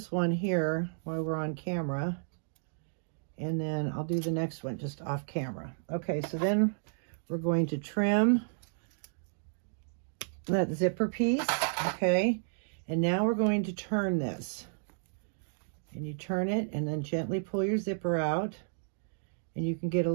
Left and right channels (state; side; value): silent; left; digital silence